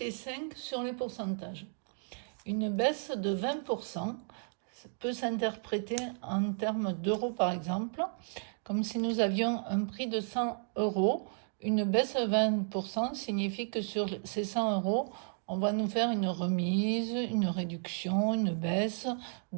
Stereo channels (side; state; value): left; silent; 56 dB below the other